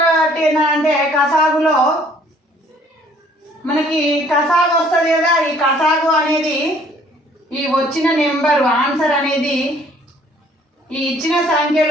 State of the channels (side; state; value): both; normal; correlation 0.59